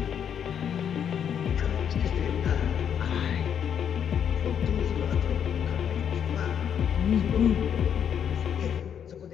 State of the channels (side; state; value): right; quieter; 8.4 dB